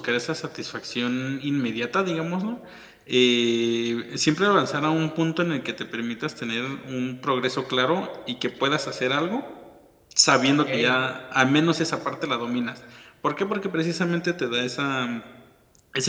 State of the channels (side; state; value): both; identical; correlation 1.00